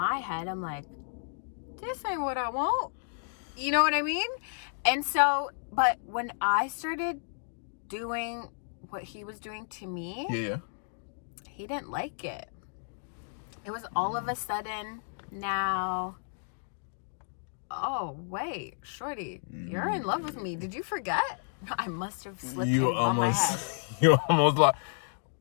head, I'm like, this ain't what I want. You know what I mean? And so, but when I started doing what he was doing to me, yeah, he didn't like it. It was all of a sudden now, oh, wait, shorty, you're in love with me. Did you forget? I must have slipped on my head. You almost like,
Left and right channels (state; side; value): silent; right; digital silence